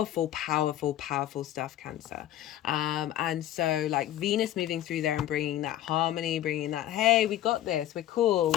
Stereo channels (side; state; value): right; quieter; 12.9 dB